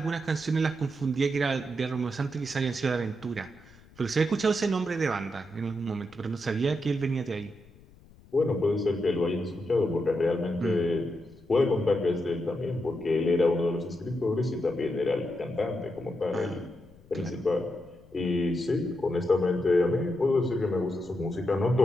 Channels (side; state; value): left; noise; rumble, 25 dB below the sound